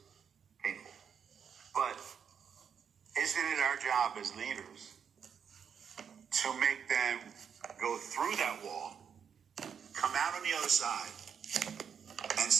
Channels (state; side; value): quieter; left; 7.3 dB